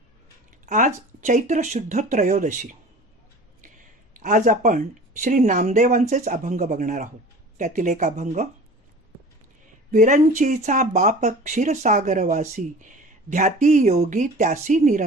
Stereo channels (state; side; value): normal; both; correlation 0.41